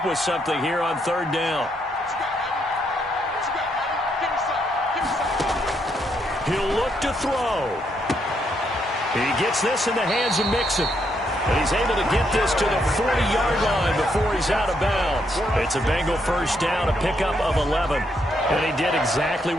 with something here on 3rd down. He'll look to throw. He gets this in the hands of Mixon. And he's able to get this to the 40-yard line before he's out of bounds. It's a Bengal first down, a pickup of 11. And he did exactly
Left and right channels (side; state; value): both; normal; correlation 0.76